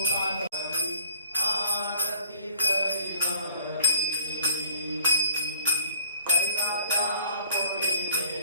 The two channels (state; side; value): inverted; both; correlation -0.56